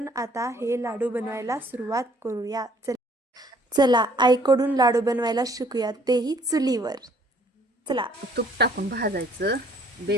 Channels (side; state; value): both; normal; correlation 0.60